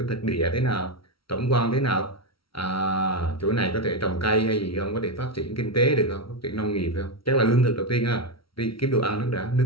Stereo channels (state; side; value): late; right; 0.75 ms